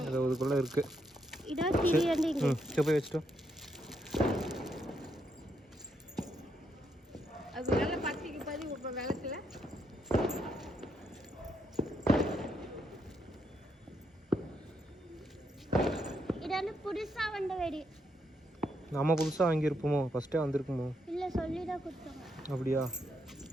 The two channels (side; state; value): both; normal; correlation 0.78